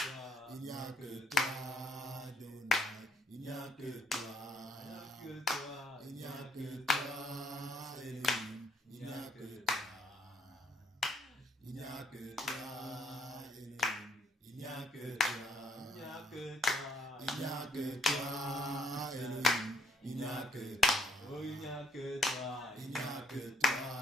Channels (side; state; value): both; normal; correlation 0.65